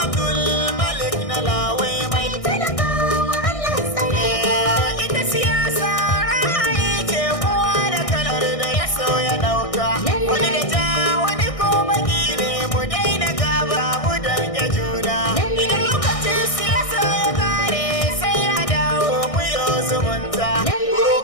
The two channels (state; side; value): late; right; 1.6 ms